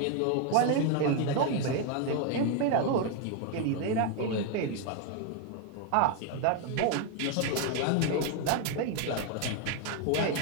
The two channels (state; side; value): different; both; correlation 0.01